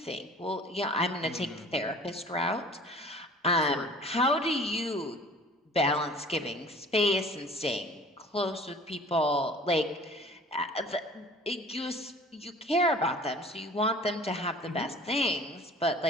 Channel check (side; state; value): both; normal; correlation 0.47